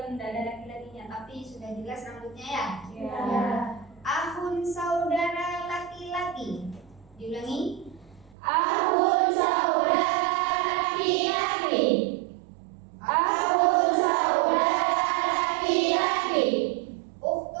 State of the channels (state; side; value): drops out; left; at 8.3 s